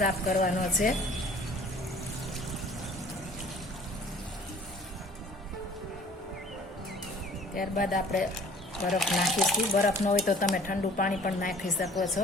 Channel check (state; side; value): normal; both; correlation 0.51